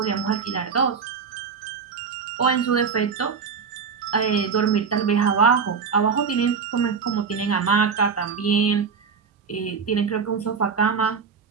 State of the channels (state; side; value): quieter; left; 5.9 dB